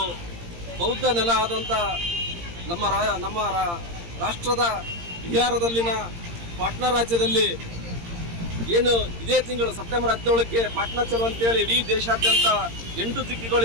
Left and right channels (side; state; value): left; late; 17 ms